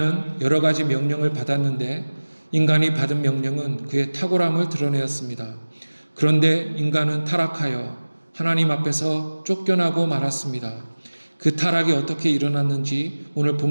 여러 가지 명령을 받았는데 인간이 받은 명령은 그의 탁월함을 드러내었습니다. 그런데 인간은 타락하여 하나님 앞에서 쫓겨나고 말았습니다. 그 타락이 어떻게 일어났는지 오늘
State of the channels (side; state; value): both; inverted; correlation -1.00